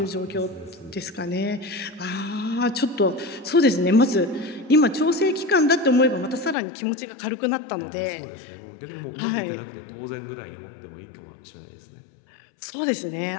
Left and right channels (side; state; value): right; drops out; at 6.6 s